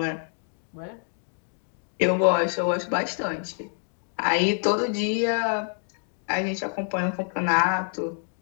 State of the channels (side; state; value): right; silent; 59 dB below the other